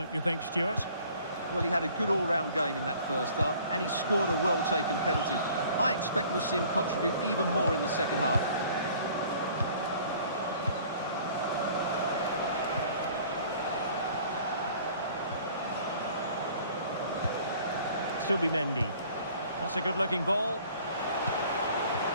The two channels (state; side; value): inverted; both; correlation -0.52